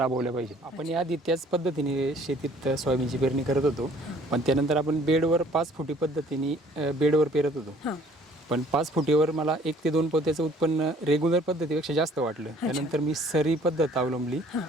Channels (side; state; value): both; normal; correlation 0.56